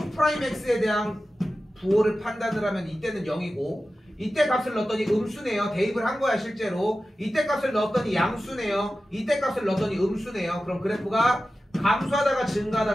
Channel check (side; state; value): both; normal; correlation 0.94